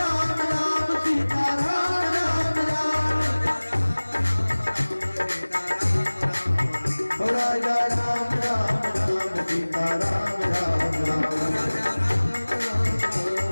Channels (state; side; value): inverted; both; correlation -1.00